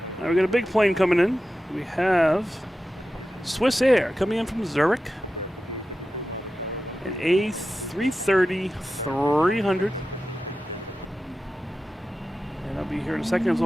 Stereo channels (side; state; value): both; normal; correlation 0.93